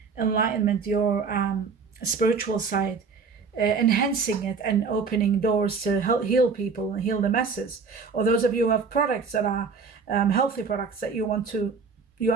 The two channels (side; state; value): left; quieter; 5.1 dB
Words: enlightenment, your spiritual side, enhancing it and opening doors to help heal people and heal the masses. Or those of you who have products that are healthy products that you